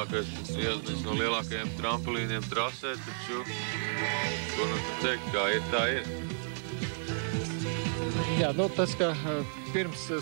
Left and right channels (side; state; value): left; silent; digital silence